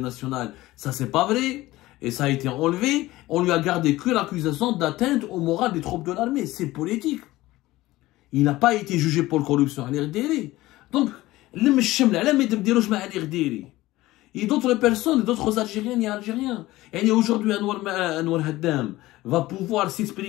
nationale. Ça, c'est pas vrai. Et ça a été enlevé. On lui a gardé que l'accusation d'atteinte au moral des troupes de l'armée. C'est politique. Il n'a pas été jugé pour corruption à l'IRDL. Donc, et d'autres personnes, d'autres Algériens et Algériens. Et aujourd'hui, Anwar Haddam va pouvoir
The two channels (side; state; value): right; quieter; 17.7 dB